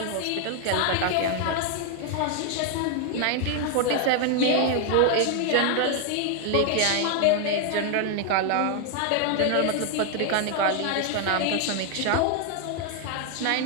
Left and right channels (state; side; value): different; both; correlation 0.00